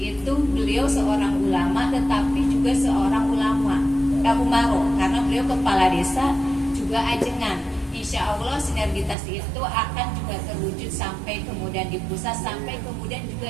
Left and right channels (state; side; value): drops out; left; at 9.2 s